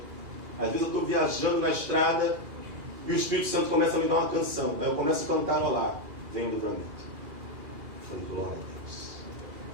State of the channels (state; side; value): late; left; 2.4 ms